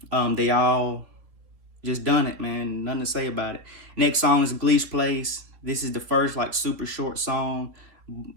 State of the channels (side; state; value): left; late; 3.3 ms